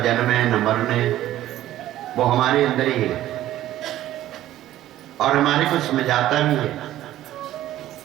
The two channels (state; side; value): quieter; left; 13.7 dB